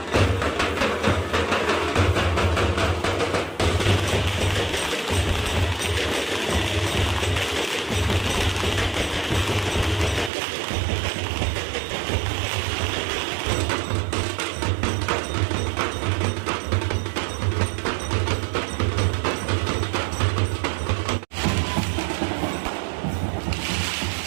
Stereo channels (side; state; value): left; drops out; at 10.3 s